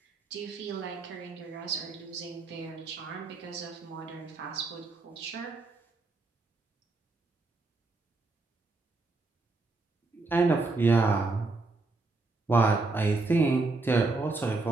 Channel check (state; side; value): quieter; left; 3.5 dB